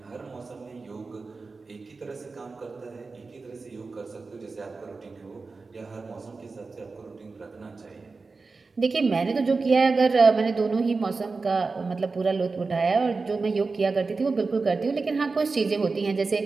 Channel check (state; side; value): quieter; left; 4.1 dB